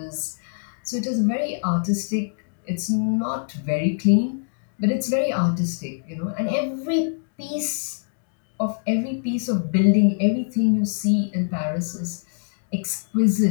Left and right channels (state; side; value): silent; right; digital silence